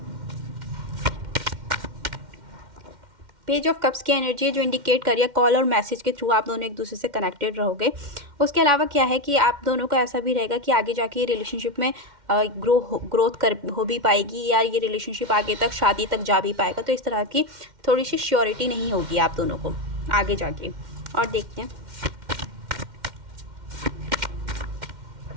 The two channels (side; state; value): left; late; 2.1 ms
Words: पेज ऑफ कप्स की एनर्जी, जो इंडिकेट करिए कॉल और मैसेज के थ्रू आप दोनों एक दूसरे से कनेक्टेड रहोगे। उसके अलावा क्या है कि आप दोनों को ऐसा भी रहेगा कि आगे जाके ये रिलेशनशिप में ग्रोथ हो भी पाएगी, या ये रिलेशनशिप आगे तक शादी तक जा भी पाएगा। तो इस तरह की थोड़ी सी श्योरिटी नहीं होगी आप दोनों को आगे जाके। और देखते हैं,